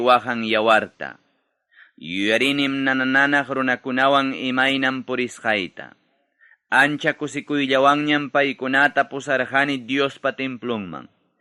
yawarta. Yuyarinim nanananaq runakunawan imaynam purisqayta. Ancha kusikuyllawanñam paykunata pusarqani Diospa templunman.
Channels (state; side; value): identical; both; correlation 1.00